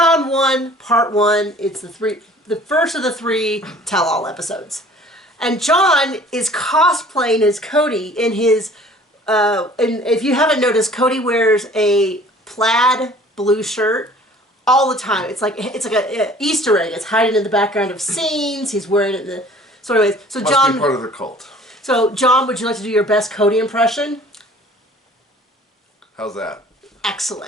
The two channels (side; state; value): both; normal; correlation 0.50